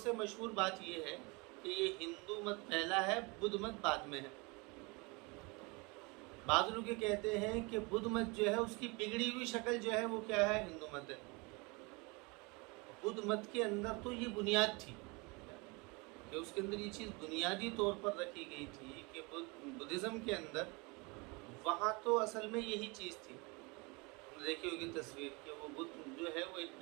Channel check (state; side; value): quieter; left; 27.9 dB